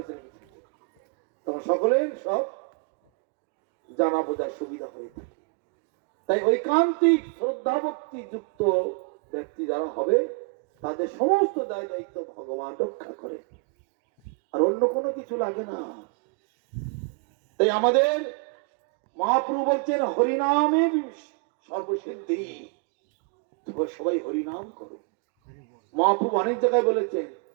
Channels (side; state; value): left; quieter; 34.0 dB